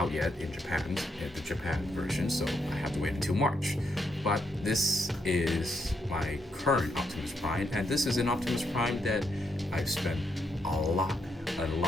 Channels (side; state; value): both; normal; correlation 0.78